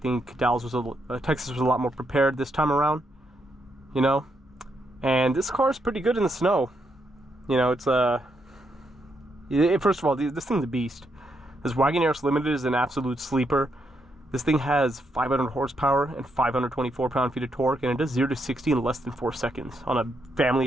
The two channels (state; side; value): normal; both; correlation 0.79